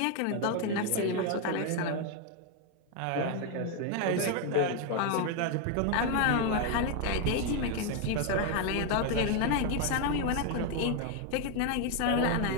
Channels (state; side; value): different; both; correlation 0.01